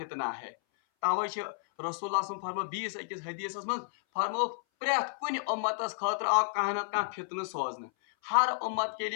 ہے. توے رسول اللہ صلی اللہ علیہ وسلم فرمو بیس اکس حدیث من فرمو پریت کن امتس خاطر آو کانہ نتہ کانہ فتنہ سوزن, ہر امت کے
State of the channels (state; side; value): silent; right; 57 dB below the other